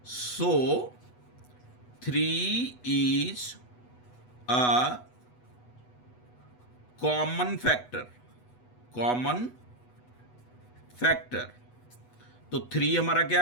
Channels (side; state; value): right; late; 8.1 ms